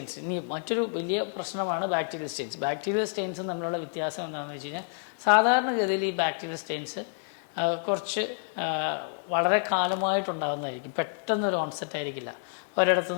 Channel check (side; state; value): right; silent; digital silence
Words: ഇനി മറ്റൊരു വലിയ പ്രശ്നമാണ് ബാക്ടീരിയൽ സ്റ്റെയിൻസ്. ബാക്ടീരിയൽ സ്റ്റെയിൻസും തമ്മിലുള്ള വ്യത്യാസം എന്താണെന്ന് വെച്ച് കഴിഞ്ഞാൽ സാധാരണഗതിയിൽ ഈ ബാക്ടീരിയൽ സ്റ്റെയിൻസ് കുറച്ച് വളരെ കാലമായിട്ടുണ്ടാകുന്നതായിരിക്കും. പെട്ടെന്നൊരു ഓൺസെറ്റ് ആയിരിക്കില്ല.